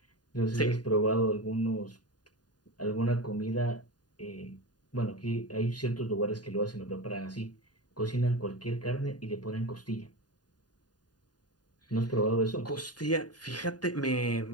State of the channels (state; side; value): late; right; 0.69 ms